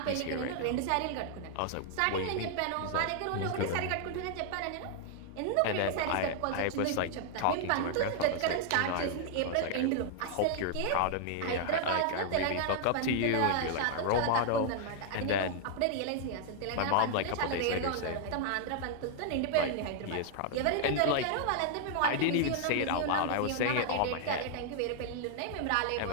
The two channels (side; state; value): both; different; correlation 0.00